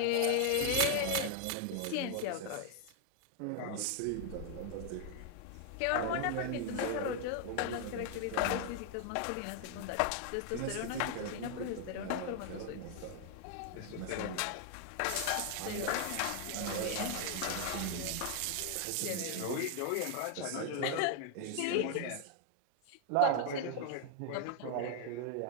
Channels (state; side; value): different; both; correlation 0.00